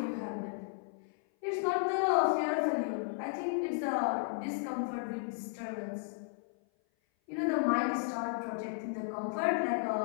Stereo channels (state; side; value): silent; right; 55 dB below the other